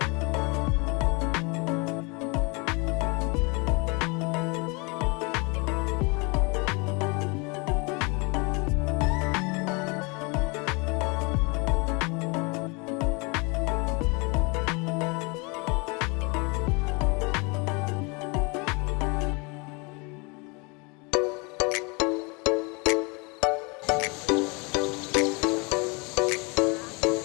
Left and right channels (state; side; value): quieter; right; 29.7 dB